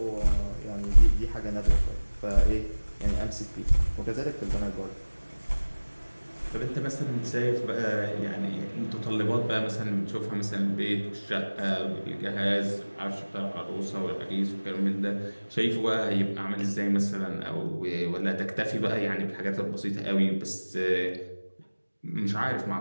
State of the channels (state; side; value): inverted; both; correlation -1.00